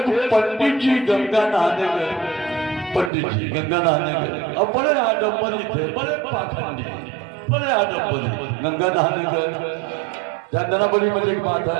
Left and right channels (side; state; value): left; drops out; at 3.1 s